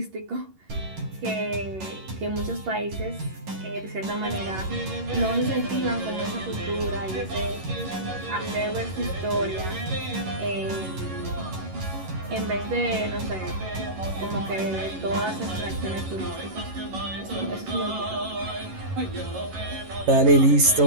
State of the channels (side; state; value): left; late; 11 ms